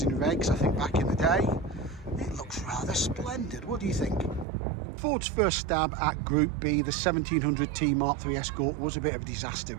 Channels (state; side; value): drops out; left; at 4.5 s